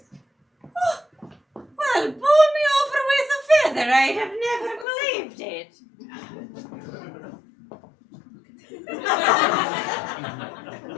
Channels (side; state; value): right; drops out; at 4.9 s